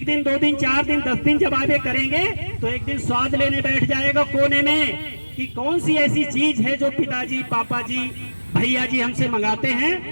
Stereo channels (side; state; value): both; inverted; correlation -1.00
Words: दिन 2 दिन 4 दिन 10 दिन जब आगे करेंगे तो एक दिन स्वाद लेने बैठ जाएगा कोने में कि कौन सी ऐसी चीज है जो पिताजी, पापा जी, भैया जी हमसे मंगाते